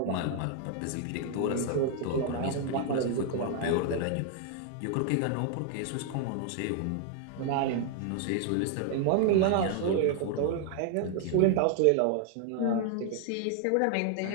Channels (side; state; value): both; different; correlation 0.00